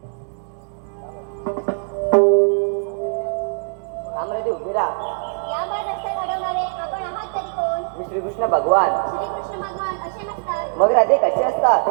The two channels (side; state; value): left; silent; digital silence